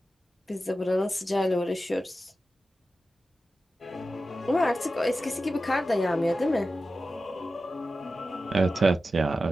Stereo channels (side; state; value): both; normal; correlation 0.93